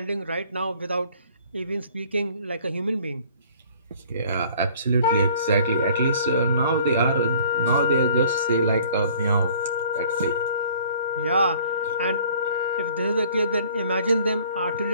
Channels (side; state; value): both; inverted; correlation -0.54